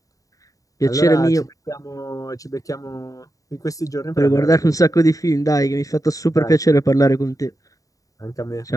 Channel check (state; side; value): late; right; 0.16 ms